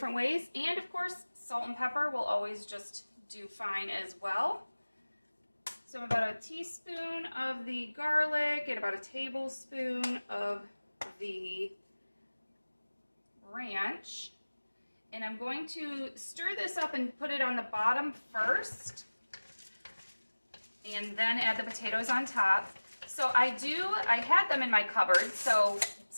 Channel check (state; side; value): inverted; both; correlation -1.00